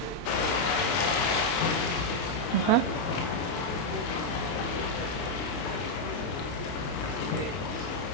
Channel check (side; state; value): right; late; 23 ms